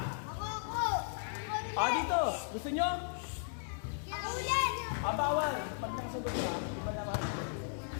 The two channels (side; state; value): right; silent; 54 dB below the other